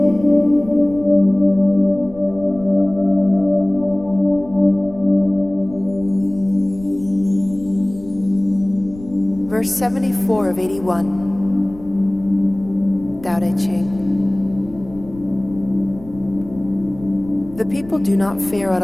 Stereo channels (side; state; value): left; noise; rumble, 19 dB below the sound